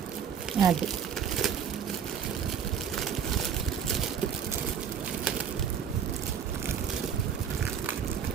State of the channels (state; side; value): quieter; left; 7.8 dB